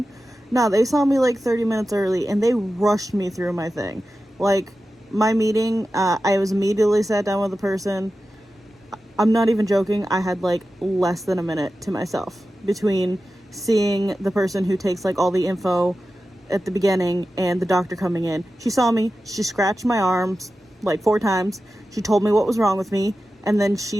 No, they saw me like 30 minutes early and they rushed me through my thing. Like my meeting, I was immediately sat down with the person. I'm not even joking. I had like less than a minute to myself between seeing the person who takes like all the info at the beginning and the doctor coming in. She saw me, she scratched my arms like 4 times. She told me what was wrong with me, and then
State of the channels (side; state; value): both; normal; correlation 0.93